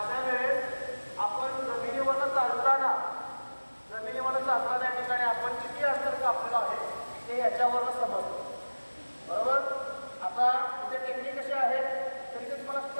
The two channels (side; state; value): both; inverted; correlation -1.00